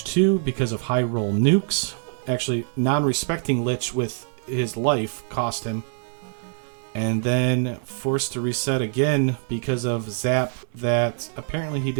2 because of high roll nukes. Actually, non-respecting Lich with his life cost him. And then forced to reset again because of Zap that apparently he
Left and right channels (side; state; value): left; silent; digital silence